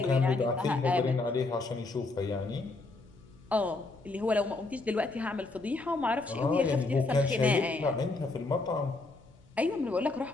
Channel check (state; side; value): quieter; right; 3.3 dB